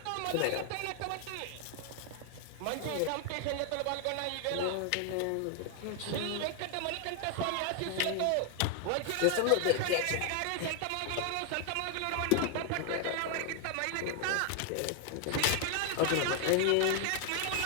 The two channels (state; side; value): different; both; correlation 0.00